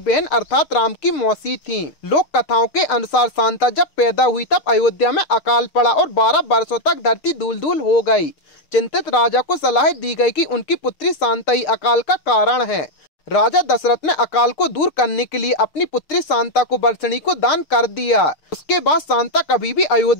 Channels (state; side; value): late; right; 6.5 ms